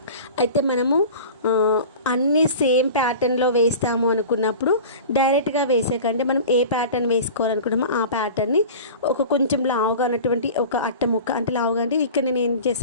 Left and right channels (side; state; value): both; inverted; correlation -0.37